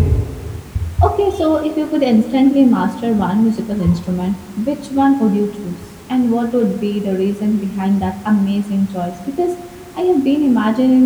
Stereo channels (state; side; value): identical; both; correlation 1.00